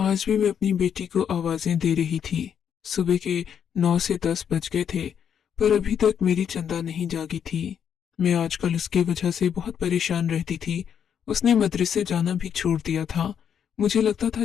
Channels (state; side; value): quieter; right; 8.2 dB